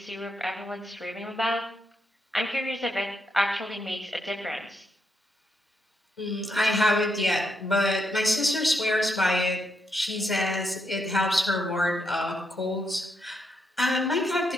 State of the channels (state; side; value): normal; both; correlation 0.79